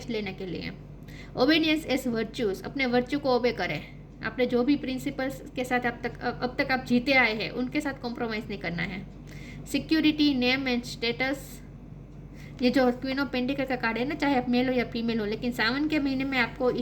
लेने के लिए। ओबीडियंस इज वर्च्यूज, अपने वर्च्यू को ओबे करें। आपने जो भी प्रिंसिपल्स के साथ अब तक आप जीते आए हैं उनके साथ कॉम्प्रोमाइज़ नहीं करना है। सिक्योरिटी, नेम एंड स्टेटस, ये जो क्वीन ऑफ पेंटिकल का कार्ड है ना, चाहे आप मेल हो या फीमेल हो, लेकिन सावन के महीने में आपको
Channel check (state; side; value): identical; both; correlation 1.00